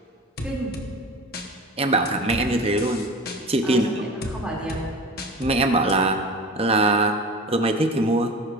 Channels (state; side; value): normal; both; correlation 0.34